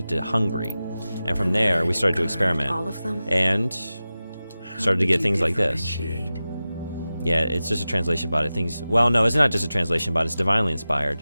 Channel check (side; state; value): both; inverted; correlation -0.95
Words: to hungry. And from there, we started to experiment. All of them? And started to get things like this. Yeah, it's just a translation bot. Well, no, it's not just a translation bot. It's divinely inspired.